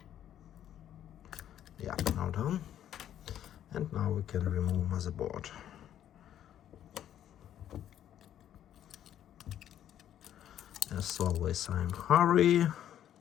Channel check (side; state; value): right; quieter; 10.9 dB